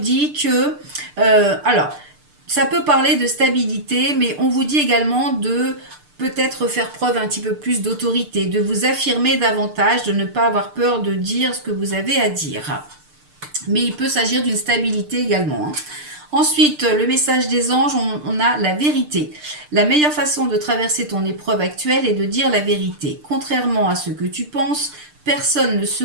que... alors, ça peut parler de stabilité, mais on vous dit également de peut-être faire preuve un petit peu plus d'autorité, de vous affirmer davantage, de ne pas avoir peur de dire ce que vous avez à dire. Mais il peut s'agir d'une stabilité également, hein. Ensuite, le message des anges, on a la vérité. La meilleure façon de traverser ton épreuve actuelle est de dire la vérité. Contrairement à ce que tu penses, personne ne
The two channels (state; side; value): late; left; 6.7 ms